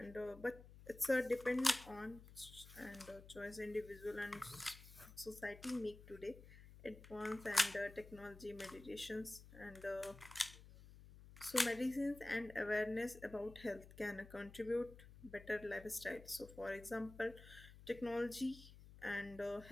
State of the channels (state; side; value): noise; left; hum, 17 dB below the sound